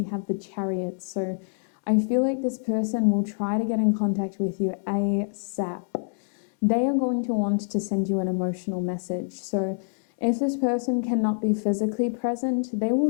have the Chariot. So I feel like this person will try to get in contact with you ASAP. They are going to want to send you an emotional message. So if this person cannot be physically present, they will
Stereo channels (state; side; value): silent; right; 61 dB below the other